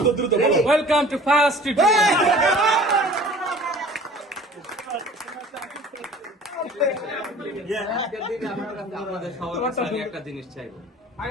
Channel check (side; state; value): both; normal; correlation 0.46